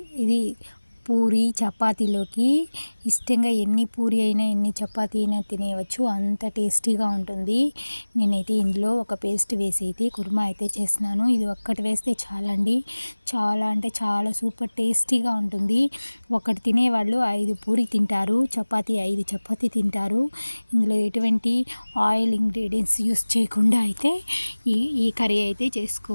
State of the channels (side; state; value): both; inverted; correlation -1.00